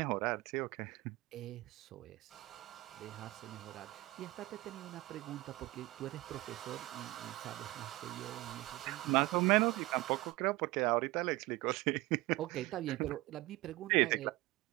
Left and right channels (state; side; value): quieter; left; 19.8 dB